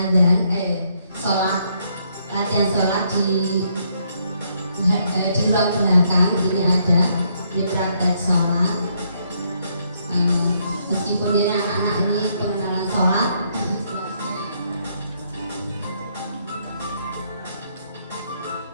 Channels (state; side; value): inverted; both; correlation -0.72